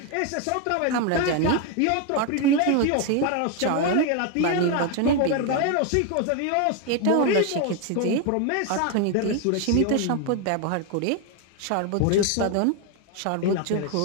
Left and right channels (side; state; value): both; different; correlation 0.01